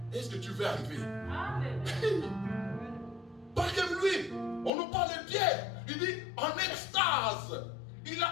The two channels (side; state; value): right; drops out; at 4.7 s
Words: Est-ce que tu veux arriver? Parce que lui, on nous parle de Pierre. Il dit en extase.